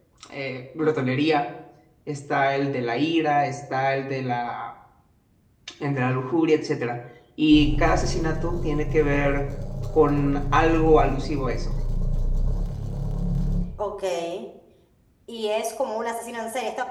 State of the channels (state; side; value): identical; both; correlation 1.00